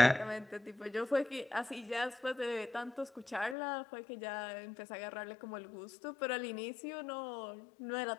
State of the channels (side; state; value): right; drops out; at 3.6 s